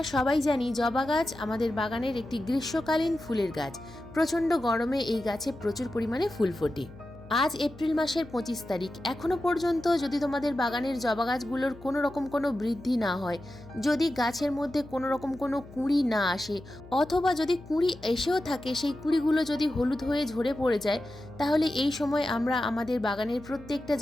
সবাই জানি জবা গাছ আমাদের বাগানের একটি গ্রীষ্মকালীন ফুলের গাছ। প্রচণ্ড গরমে এই গাছে প্রচুর পরিমাণে ফুল ফোটে। আজ এপ্রিল মাসের 25 তারিখ, এখনও পর্যন্ত যদি তোমাদের বাগানের জবা গাছগুলোর কোনো রকম কোনো বৃদ্ধি না হয়, যদি গাছের মধ্যে কোনো রকম কোনো কুঁড়ি না আসে, অথবা যদি কুঁড়ি এসেও থাকে সেই কুঁড়িগুলো যদি হলুদ হয়ে ঝরে পড়ে যায়, তাহলে এই সময় আমরা আমাদের বাগানের প্রত্যেকটা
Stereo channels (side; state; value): left; noise; hum, 19 dB below the sound